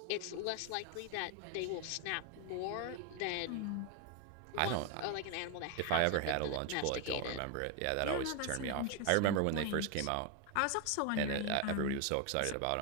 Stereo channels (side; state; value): both; different; correlation 0.01